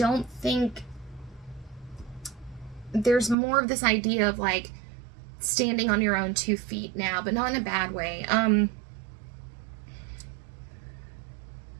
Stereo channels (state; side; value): drops out; left; at 3.4 s